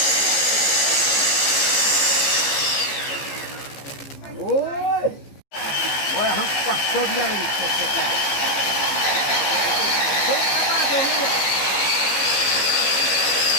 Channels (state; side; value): late; right; 14 ms